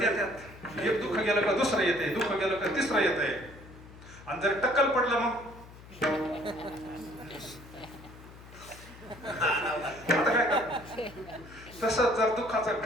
येतात. एक दुःख गेलं का दुसरं येते, दुःख गेलं का तिसरं येतंय. आणि जर टक्कल पडलं मग आता काय कर. तसं जर दुःखाचं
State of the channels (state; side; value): noise; left; hum, 19 dB below the sound